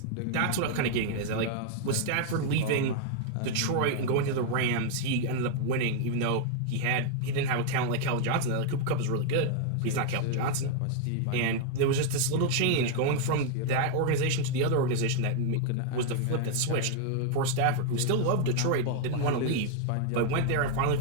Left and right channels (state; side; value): different; both; correlation 0.00